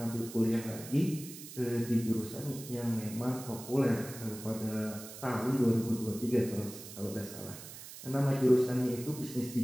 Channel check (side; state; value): right; noise; hiss, 13 dB below the sound